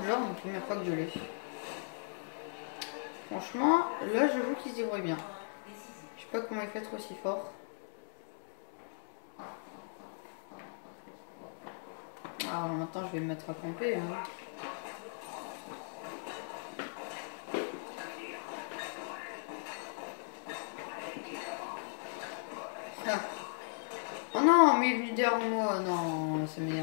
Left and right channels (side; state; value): right; silent; digital silence